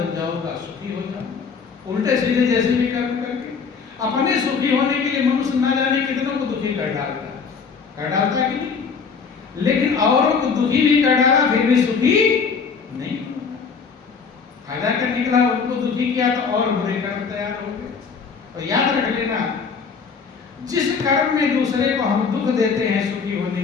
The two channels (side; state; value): right; quieter; 5.6 dB